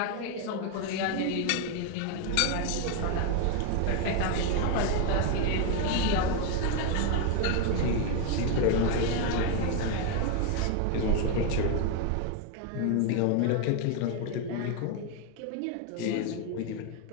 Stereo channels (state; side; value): different; both; correlation 0.01